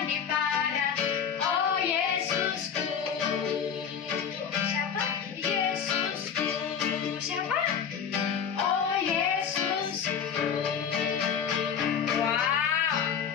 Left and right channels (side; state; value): right; quieter; 7.4 dB